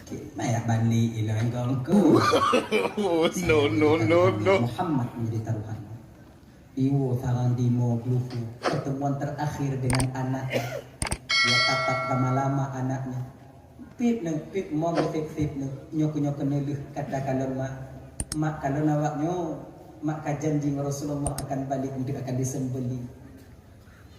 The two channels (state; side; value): identical; both; correlation 1.00